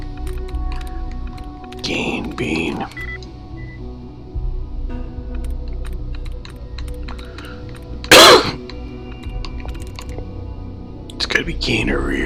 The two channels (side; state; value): both; identical; correlation 1.00